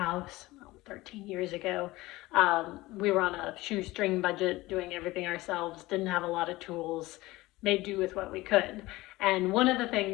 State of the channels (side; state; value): right; quieter; 19.3 dB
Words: 13 years ago, we were on a shoestring budget, doing everything ourselves, didn't have a lot of tools, made do with what we could. And one of the